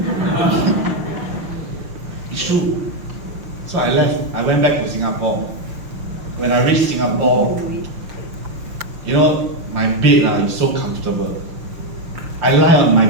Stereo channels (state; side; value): late; left; 5.7 ms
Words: It's true. So I left. I went back to Singapore. When I reached Singapore, you know, my bed is so comfortable. I lie on my